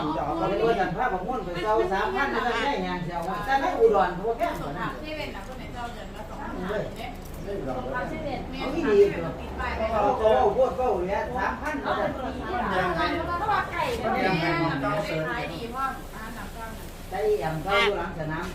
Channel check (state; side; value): identical; both; correlation 1.00